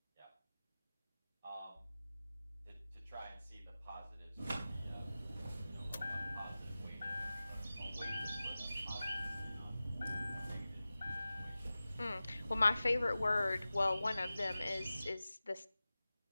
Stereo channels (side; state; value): both; inverted; correlation -0.96